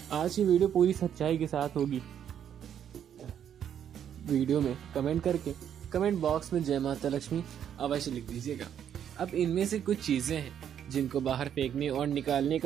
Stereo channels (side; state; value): left; quieter; 9.2 dB